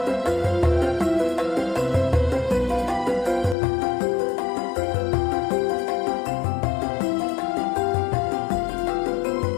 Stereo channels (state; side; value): drops out; right; at 3.6 s